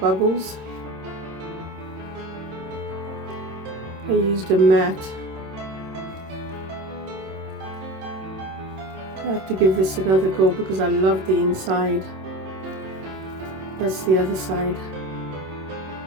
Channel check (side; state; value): left; late; 26 ms